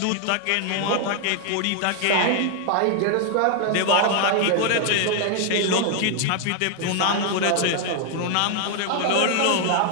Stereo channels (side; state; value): both; different; correlation 0.00